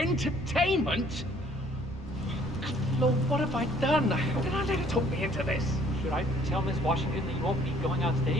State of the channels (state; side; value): normal; both; correlation 0.60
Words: Lord, what have I done? How did I let her talk me into this? Should I tell Miss Washington that you won't be going on